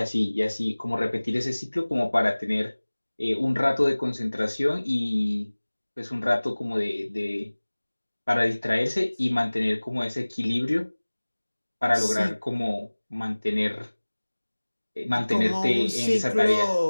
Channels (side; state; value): both; inverted; correlation -1.00